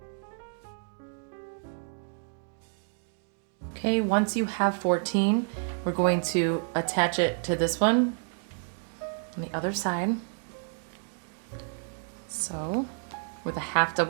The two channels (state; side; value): silent; left; 57 dB below the other